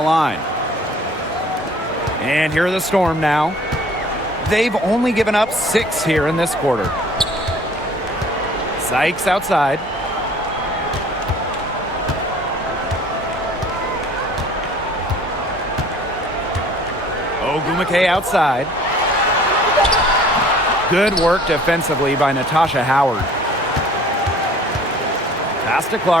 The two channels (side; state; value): both; normal; correlation 0.51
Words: line. And here are the Storm now. They've only given up 6 here in this quarter. Sykes outside. Ogumake outside. Good work defensively by Natasha Howard. Pass to